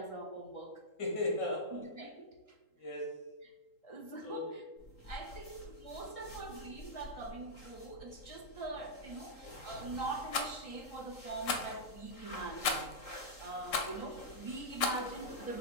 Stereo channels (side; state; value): right; late; 3.8 ms